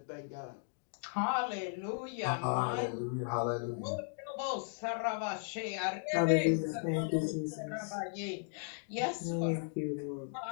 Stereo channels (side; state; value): right; silent; digital silence